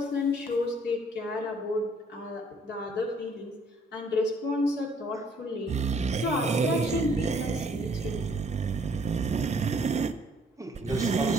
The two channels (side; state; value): both; normal; correlation 0.62